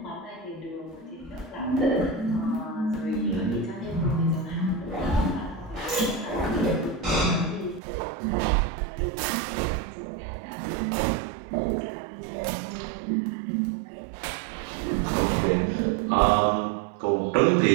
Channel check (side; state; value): left; drops out; at 7.8 s